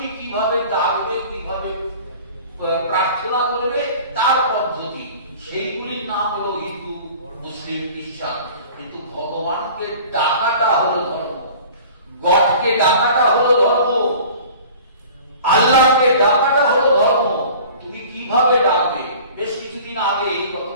কিভাবে ডাকবে, কিভাবে প্রার্থনা করবে, তার পদ্ধতি। সেইগুলির নাম হলো হিন্দু, মুসলিম, খ্রিস্টান। কিন্তু ভগবানকে ডাকাটা হলো ধর্ম, গডকে ডাকাটা হলো ধর্ম, আল্লাহকে ডাকাটা হলো ধর্ম। তুমি কিভাবে ডাকবে? বেশ কিছুদিন আগে, গত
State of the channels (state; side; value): inverted; both; correlation -0.44